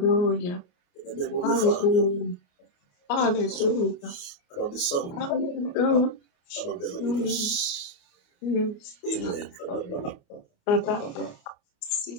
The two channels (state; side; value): late; right; 28 ms